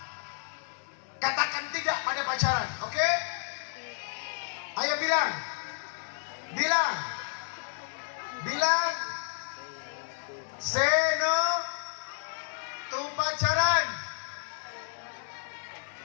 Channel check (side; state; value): right; silent; digital silence